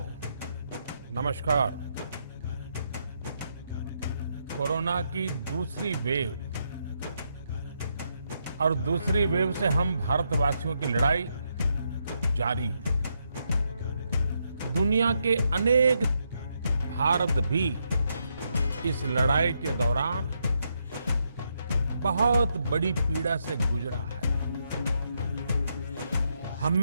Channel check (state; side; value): inverted; both; correlation -0.79